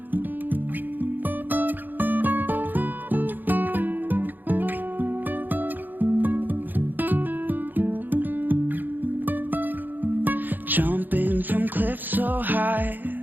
Jumping from cliffs so high,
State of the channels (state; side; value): late; left; 0.088 ms